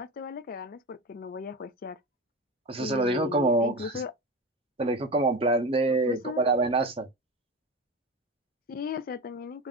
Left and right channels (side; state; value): both; normal; correlation 0.26